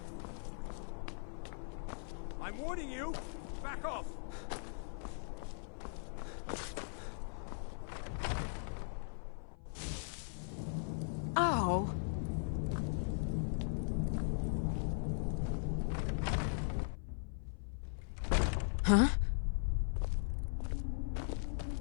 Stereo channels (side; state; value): right; silent; 52 dB below the other